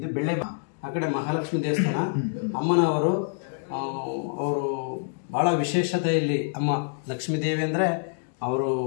ಬೆಳ್ಳೆ ಆ ಕಡೆ ಮಹಾಲಕ್ಷ್ಮಿ ದೇವಸ್ಥಾನ. ಅಮ್ಮನವರು ಅವರು ಭಾಳ ವಿಶೇಷತೆ. ಇಲ್ಲಿ ಅಮ್ಮ ಲಕ್ಷ್ಮೀದೇವಿ ಅಂದರೆ ಅವರು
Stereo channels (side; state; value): right; silent; digital silence